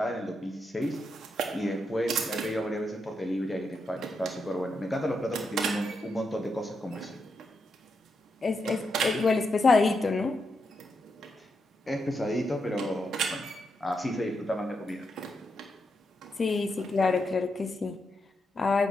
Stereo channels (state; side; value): normal; both; correlation 0.83